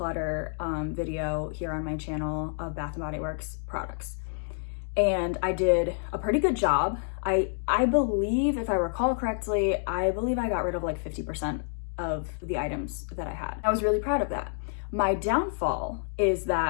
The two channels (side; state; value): right; silent; digital silence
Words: video here on my channel of Bath & Body Works products. And I did a pretty good job. I believe, if I recall correctly, I believe I got rid of like 50% of the items that I had. I was really proud of that. My downfall is